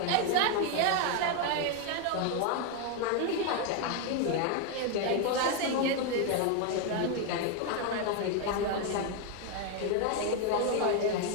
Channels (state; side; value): different; both; correlation 0.01